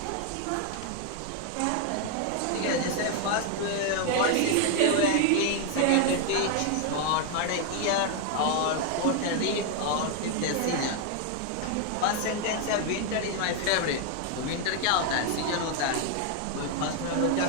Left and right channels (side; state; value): both; different; correlation 0.01